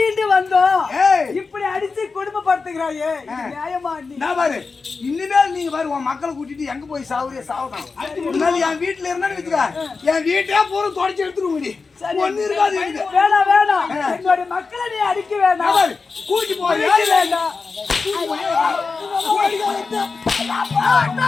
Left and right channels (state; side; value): quieter; right; 4.5 dB